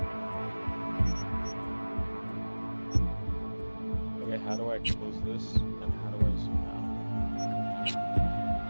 Okay, how do I close this? And how do I zoom out?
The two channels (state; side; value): inverted; both; correlation -1.00